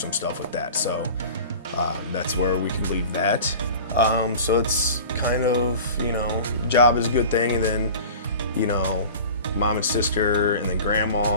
stuff with that. So that's where we can leave that. So it's kind of, job is a good thing, and then, mom and sister, and then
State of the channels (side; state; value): both; inverted; correlation -0.39